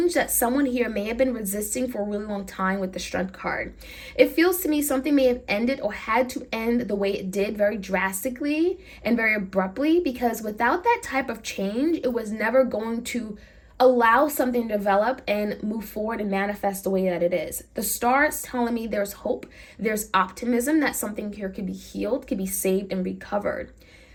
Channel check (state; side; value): identical; both; correlation 1.00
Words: that someone here may have been resisting for a really long time with the Strength card. It feels to me something may have ended or had to end the way it did, very drastically and very abruptly. Because without that type of change, it was never going to allow something to develop and move forward and manifest the way that it is. The Star is telling me there's hope, there's optimism that something here could be healed, could be saved and recovered.